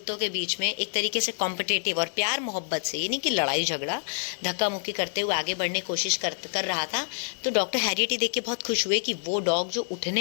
के बीच में एक तरीके से कॉम्पिटेटिव और प्यार मोहब्बत से, ये नहीं कि लड़ाई झगड़ा, धक्का मुक्की करते हुए आगे बढ़ने की कोशिश कर रहा था, तो डॉक्टर हैरियट ही देख के बहुत खुश हुए कि वो डॉग जो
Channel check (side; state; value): right; silent; digital silence